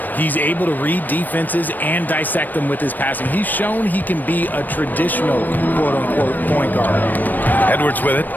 He's able to read defenses and dissect them with his passing. He's shown he can be a traditional, quote-unquote, point guard. Edwards with it.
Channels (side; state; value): right; late; 0.088 ms